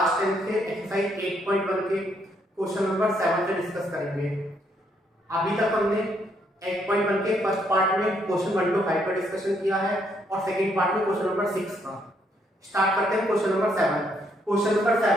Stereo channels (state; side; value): normal; both; correlation 0.72